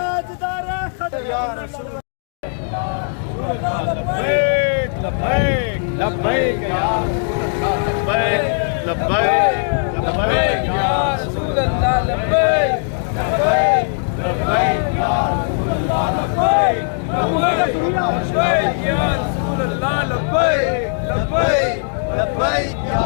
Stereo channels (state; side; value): silent; right; digital silence